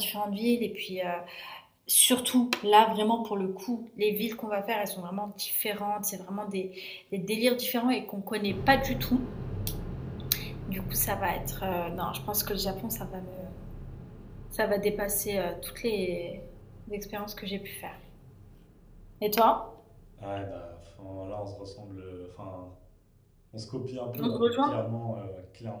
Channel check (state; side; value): identical; both; correlation 1.00